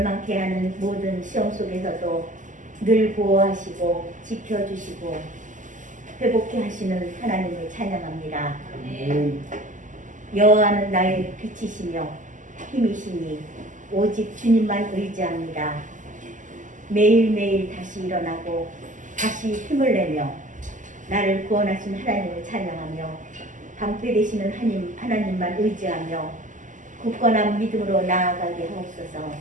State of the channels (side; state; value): left; late; 0.37 ms